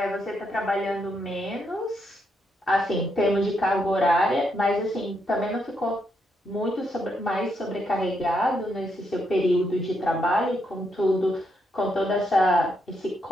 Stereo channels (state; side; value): normal; both; correlation 0.79